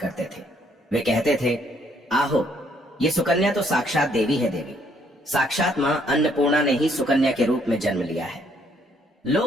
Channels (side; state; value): both; normal; correlation 0.68